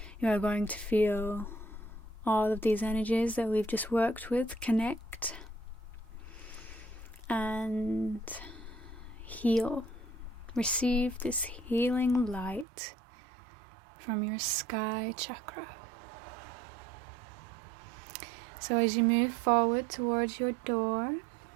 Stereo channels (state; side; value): drops out; left; at 12.7 s